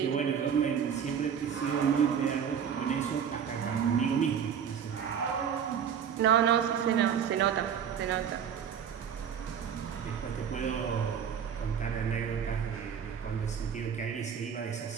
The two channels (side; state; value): left; quieter; 7.9 dB